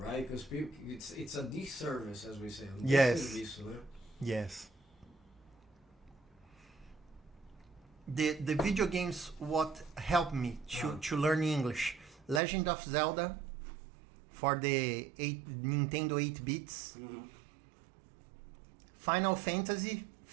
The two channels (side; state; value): left; drops out; at 12.4 s